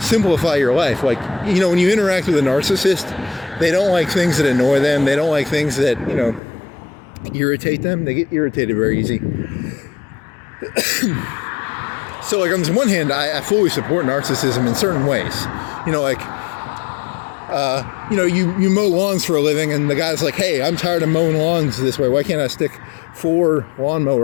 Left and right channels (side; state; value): right; drops out; at 6.4 s